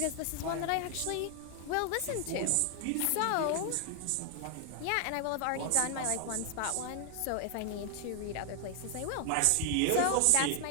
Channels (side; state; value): both; different; correlation 0.00